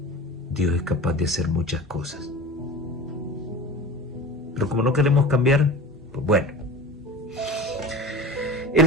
Dios es capaz de hacer muchas cosas. Pero como no queremos cambiar, pues bueno.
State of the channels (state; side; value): normal; both; correlation 0.35